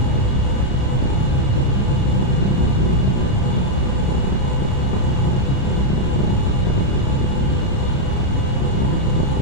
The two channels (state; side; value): late; right; 30 ms